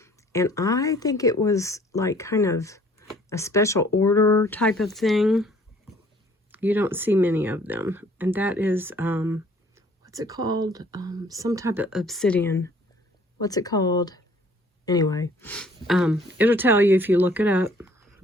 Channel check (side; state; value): both; normal; correlation 0.57